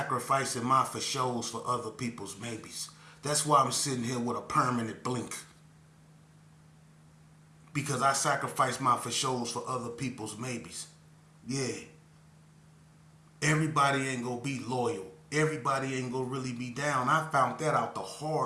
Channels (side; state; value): both; identical; correlation 1.00